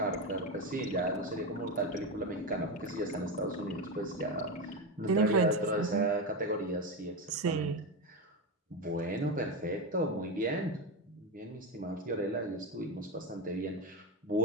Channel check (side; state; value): both; normal; correlation 0.15